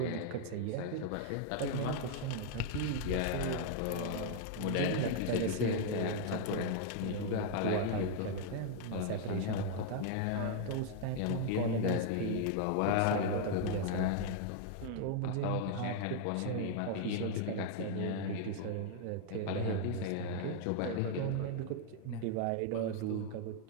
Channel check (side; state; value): both; different; correlation 0.00